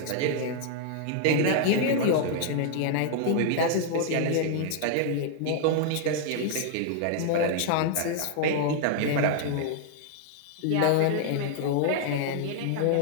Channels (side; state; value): both; different; correlation 0.00